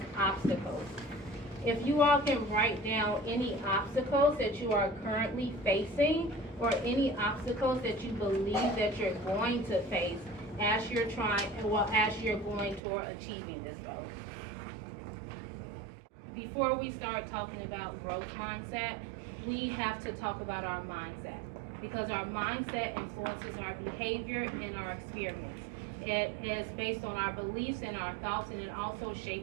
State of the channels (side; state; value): left; drops out; at 12.8 s